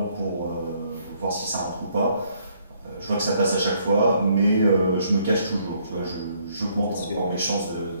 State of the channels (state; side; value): inverted; both; correlation -0.68